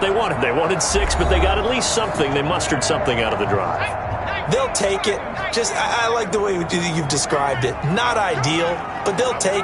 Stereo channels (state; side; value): identical; both; correlation 1.00